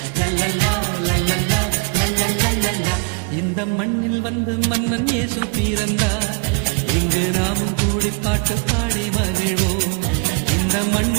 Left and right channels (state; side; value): quieter; left; 33.1 dB